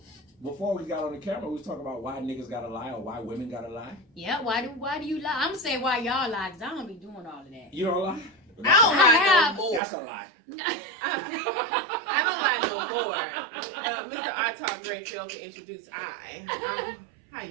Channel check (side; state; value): left; drops out; at 9.8 s